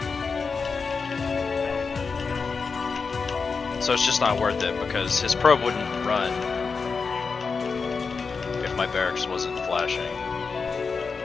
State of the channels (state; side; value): quieter; right; 5.0 dB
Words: So it's just not worth it because his probe wouldn't run if my barracks wasn't flashing.